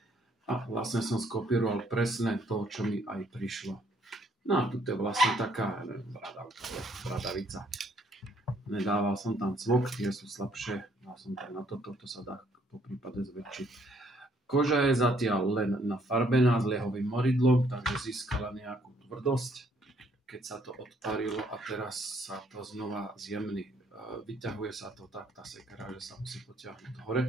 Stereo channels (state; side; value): normal; both; correlation 0.66